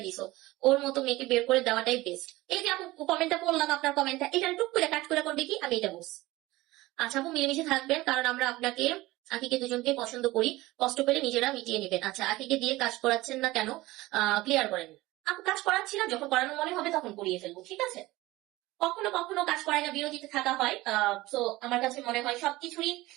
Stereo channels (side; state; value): left; quieter; 19.0 dB